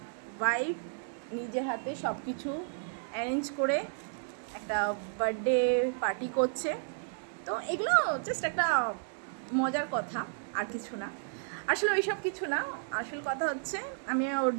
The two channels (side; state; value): left; silent; digital silence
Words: ওয়াইফ নিজের হাতে সব কিছু অ্যারেঞ্জ করে একটা বার্থডে পার্টি করছে। তো এগুলো জাস্ট একটা মজার কথা, আর কিছু না। আসলে ওই সব কিছু না, আসল কথা হচ্ছে আমি ওর